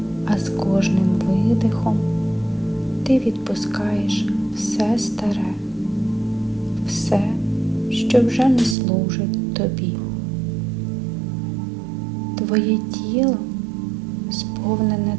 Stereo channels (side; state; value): left; drops out; at 8.8 s